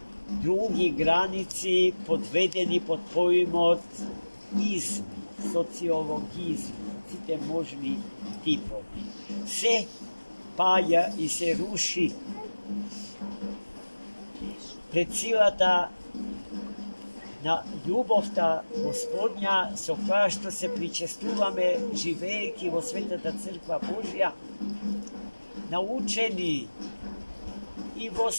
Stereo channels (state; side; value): inverted; both; correlation -1.00